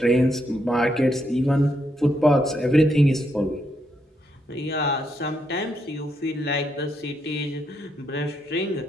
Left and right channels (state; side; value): normal; both; correlation 0.78